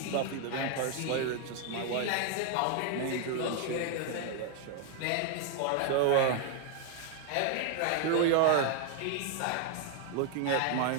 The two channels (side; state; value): both; different; correlation 0.00